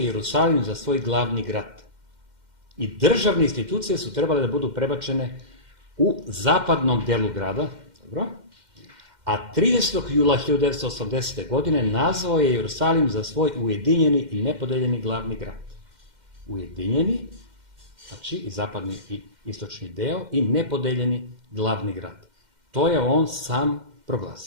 za svoj glavni grad. I državne institucije su trebale da budu prebačene u zapadnom delu grada, dobro? a 30. jula 1980. godine nazvao je Jerusalim za svoj ujedinjeni i nepodeljeni glavni grad. Ujedinjeni, znači i zapadni i istočni deo, i nepodeljeni glavni grad. To je on sam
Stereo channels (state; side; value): late; left; 2.1 ms